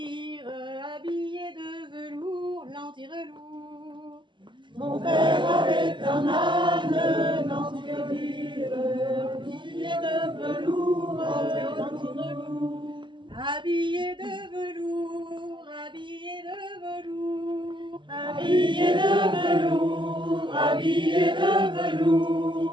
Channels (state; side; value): late; left; 0.23 ms